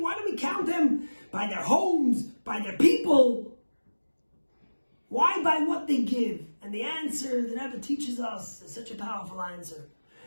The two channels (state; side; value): inverted; both; correlation -1.00